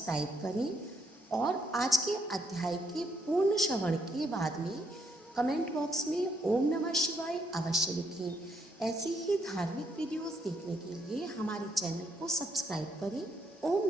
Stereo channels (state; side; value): normal; both; correlation 0.73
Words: करें और आज के अध्याय के पूर्ण श्रवण के बाद में कमेंट बॉक्स में ओम नमः शिवाय अवश्य लिखें। ऐसी ही धार्मिक वीडियोस देखने के लिए हमारे चैनल को सब्सक्राइब करें। ओम